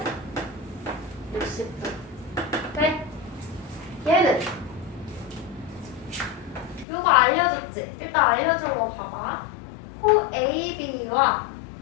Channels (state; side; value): drops out; right; at 6.9 s